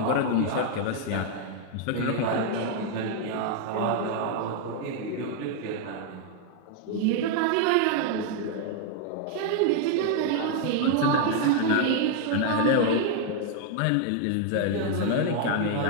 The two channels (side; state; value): both; different; correlation 0.00